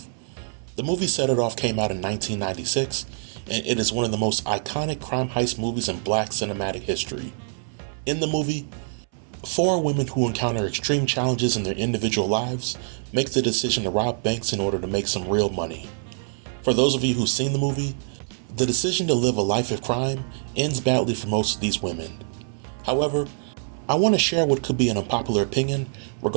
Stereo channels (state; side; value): silent; left; 62 dB below the other